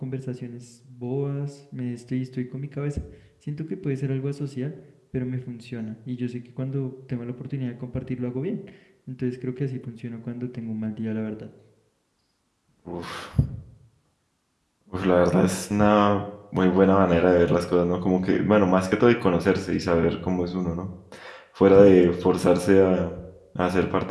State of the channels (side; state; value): both; identical; correlation 1.00